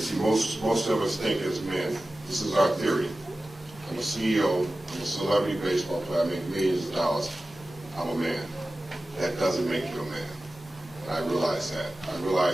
most of us think as men, this is our theory. I'm a CEO, I'm a celebrity baseball player, I make millions of dollars, I'm a man. That doesn't make you a man. And I realized that. I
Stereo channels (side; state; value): both; normal; correlation 0.95